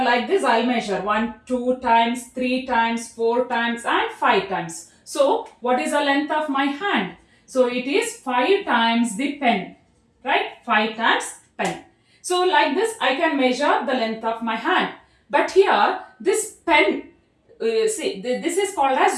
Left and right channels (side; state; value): both; identical; correlation 1.00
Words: like this I'll measure 1, 2 times, 3 times, 4 times and 5 times. So what is the length of my hand? So it is 5 times the pen, right? 5 times pen. So like this I can measure the length of my hand. But here this pen, see this is called